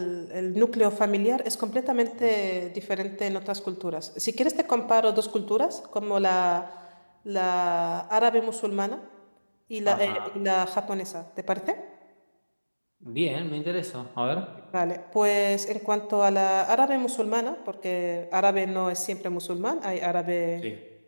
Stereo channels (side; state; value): both; inverted; correlation -1.00